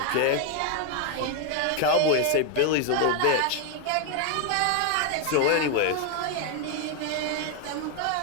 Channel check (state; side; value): different; both; correlation 0.01